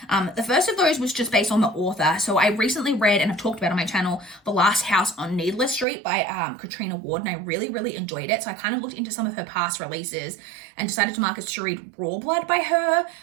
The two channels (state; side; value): drops out; left; at 5.9 s